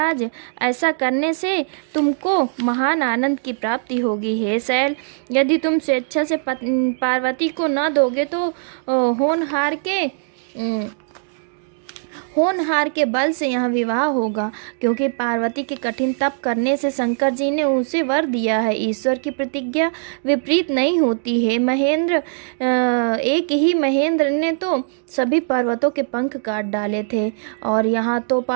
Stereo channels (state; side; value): silent; left; digital silence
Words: ऐसा करने से तुमको महान आनंद की प्राप्ति होगी। हे शैल, यदि तुम स्वेच्छा से पार्वती को न दोगे तो होनहार के बल से यहाँ विवाह होगा, क्योंकि पार्वती के कठिन तप करने से शंकर जी ने उसे वर दिया है। ईश्वर की प्रतिज्ञा विपरीत नहीं होती है महेंद्र। एक ही महेंद्र ने तो सभी पर्वतों के पंख काट डाले थे, और यहाँ तो